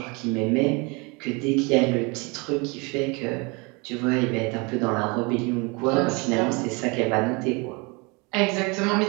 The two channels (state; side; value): quieter; left; 28.8 dB